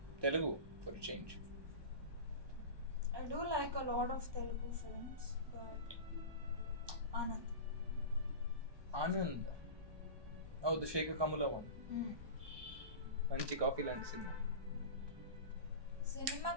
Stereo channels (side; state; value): left; late; 1.2 ms